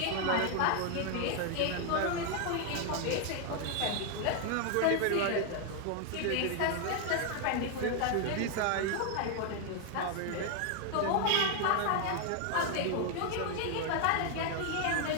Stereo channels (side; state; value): both; different; correlation 0.01